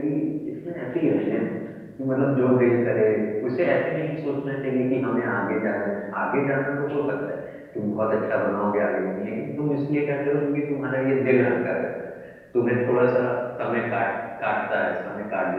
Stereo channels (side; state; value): both; identical; correlation 1.00